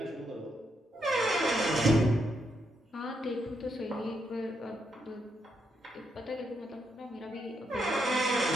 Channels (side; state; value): both; normal; correlation 0.79